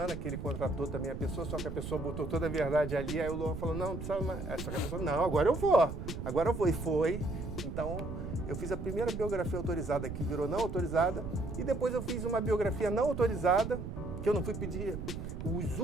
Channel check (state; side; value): noise; right; rumble, 7 dB below the sound